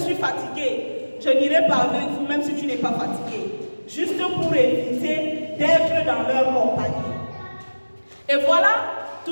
fatigué, je n'irai pas avec vous, même si tu n'es pas fatigué. Juste pour éviter d'être dans leur compagnie. Et voilà,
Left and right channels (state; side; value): inverted; both; correlation -1.00